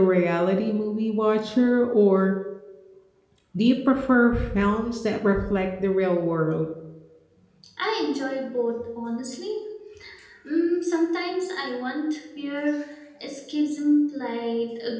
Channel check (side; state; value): both; identical; correlation 1.00